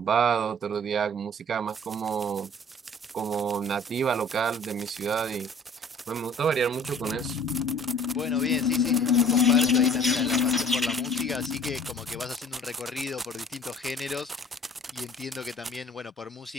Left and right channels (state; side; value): normal; both; correlation 0.51